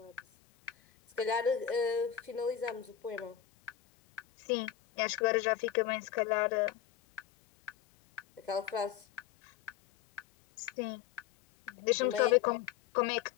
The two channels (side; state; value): right; quieter; 10.3 dB